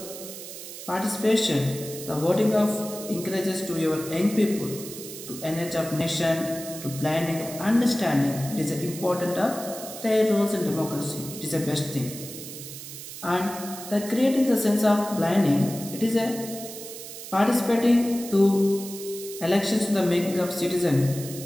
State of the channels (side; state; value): right; noise; hiss, 11 dB below the sound